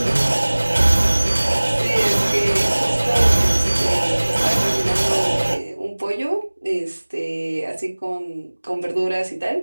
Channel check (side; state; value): both; inverted; correlation -1.00